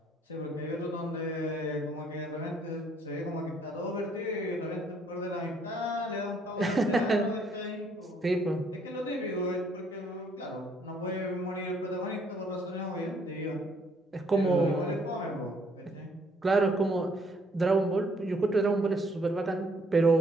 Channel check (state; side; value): normal; both; correlation 0.66